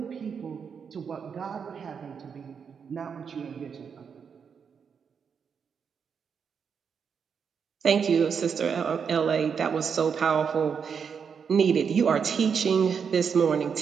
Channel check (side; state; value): left; quieter; 6.6 dB